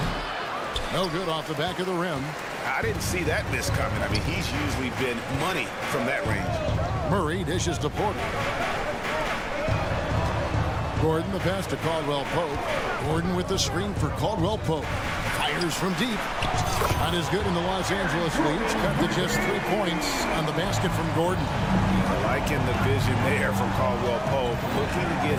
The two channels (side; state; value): both; identical; correlation 1.00